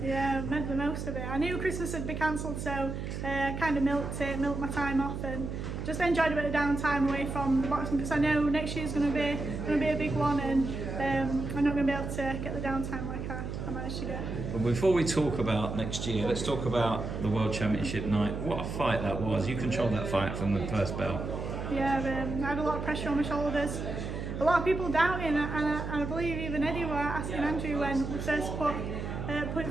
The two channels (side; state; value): right; noise; hum, 5 dB below the sound